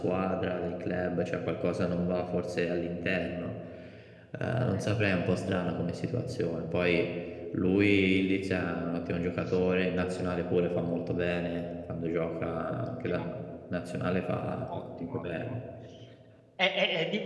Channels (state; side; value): identical; both; correlation 1.00